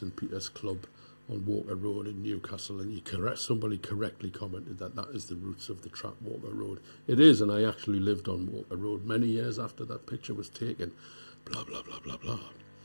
Peter's Club on Walker Road in Newcastle, and somebody correctly commented that is the roots of the track Walker Road. It is, and I actually lived on Walker Road many years after that picture was taken. Blah, blah, blah, blah, blah.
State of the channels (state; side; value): inverted; both; correlation -1.00